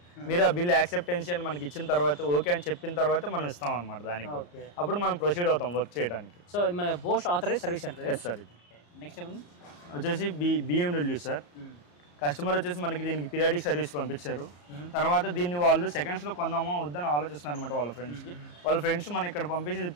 మీరు ఆ బిల్ యాక్సెప్టెన్సీ అని మనకి ఇచ్చిన తర్వాత, ఓకే అని చెప్పిన తర్వాత మనం ఇస్తాం అనమాట. దానికి కూడా అప్పుడు మనం ప్రొసీడ్ అవుతాం వర్క్ చేయడానికి. So Bosch authorise service centre. Yes sir. ఇది నెక్స్ట్ వచ్చేసి BMW సార్. కస్టమర్ వచ్చేసి మనకి దీనికి పీరియాడిక్ సర్వీస్ పంపించారు. తర్వాత దీన్ని వాళ్ళు సెకండ్స్లో కొందామా వద్దని ఆలోచిస్తున్నారు అనమాట. వాళ్ళ ఫ్రెండ్స్ మనం ఇక్కడ పంపించి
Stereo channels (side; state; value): right; late; 34 ms